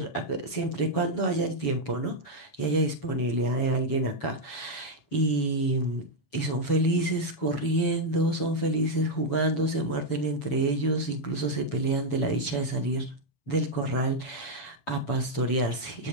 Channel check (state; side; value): late; right; 7.1 ms